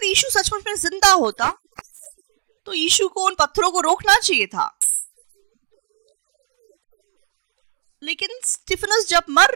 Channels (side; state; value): left; silent; digital silence